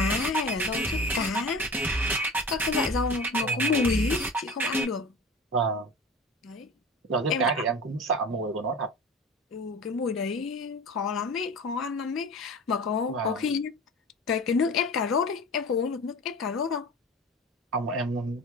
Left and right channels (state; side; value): normal; both; correlation 0.35